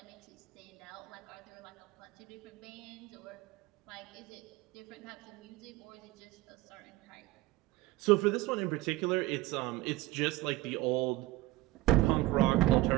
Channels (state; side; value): quieter; left; 17.6 dB